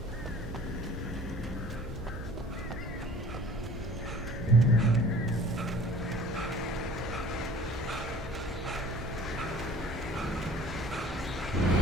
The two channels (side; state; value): both; normal; correlation 0.49